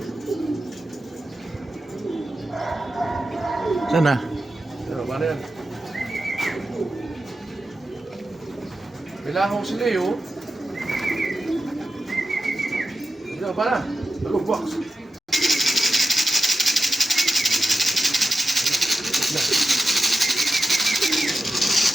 Sana. Ano ba na yan? Kailangan ko si Leo. Ano ba na? Alog, box.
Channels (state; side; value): normal; both; correlation 0.91